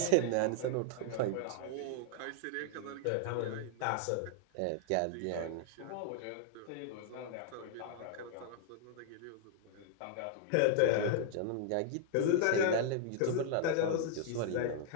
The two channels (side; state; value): both; different; correlation 0.00